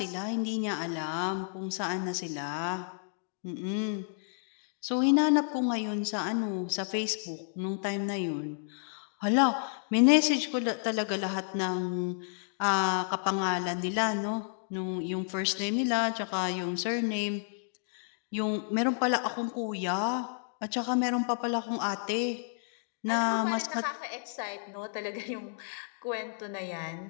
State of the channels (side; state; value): right; silent; digital silence